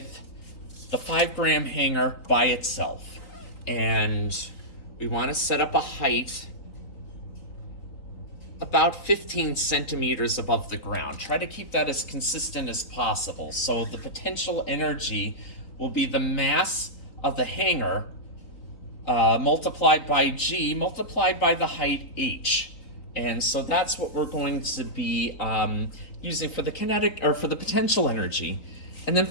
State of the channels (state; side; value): late; right; 3.8 ms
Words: the 5-gram hanger by itself. And we want to set up a height about 15 centimeters above the ground. Try to keep that as consistent as possible. So the potential energy will be the mass of the hanger multiplied by G multiplied by the height H. And so that's what we're going to be using for the kinetic, or for the potential energy. And then